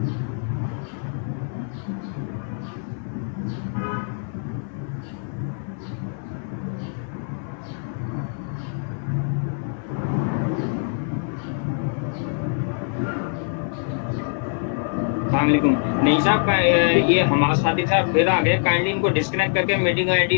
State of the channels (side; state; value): right; silent; 60 dB below the other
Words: नहीं साहब, ये हमारे साथी साहब फिर आ गए, काइंडली इनको डिस्कनेक्ट करके मीटिंग